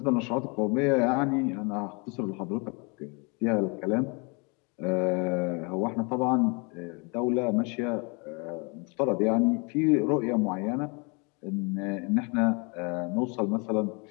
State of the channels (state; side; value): quieter; right; 32.1 dB